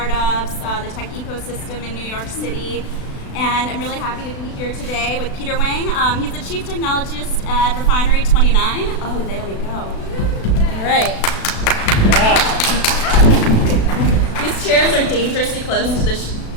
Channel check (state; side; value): late; right; 36 ms